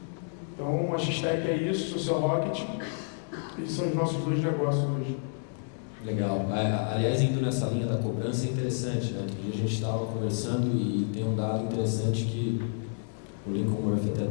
Então, a X-Tech é isso, Social Rocket, esses são os nossos 2 negócios hoje. Legal. Aliás, indo nessa linha da cobrança é interessante, né? Outro dia a gente estava conversando e tem um dado interessante que o Lincoln Murphy até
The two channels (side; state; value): right; silent; digital silence